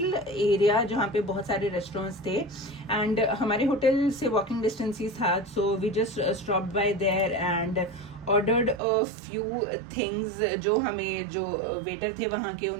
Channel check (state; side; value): drops out; left; at 8.8 s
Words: area जहाँ पे बहुत सारे रेस्टोरेंट्स थे एंड हमारे होटल से वॉकिंग डिस्टेंस ही था. So we just stopped by there and ordered a few things जो वेटर थे वहां के